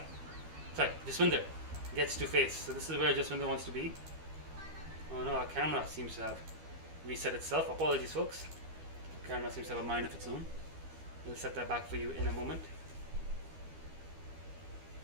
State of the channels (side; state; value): left; late; 12 ms